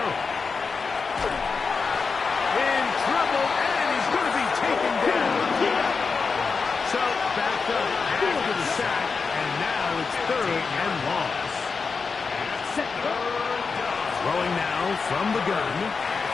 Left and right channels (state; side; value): quieter; right; 4.9 dB